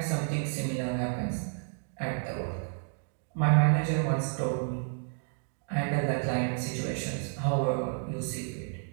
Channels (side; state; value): left; silent; 57 dB below the other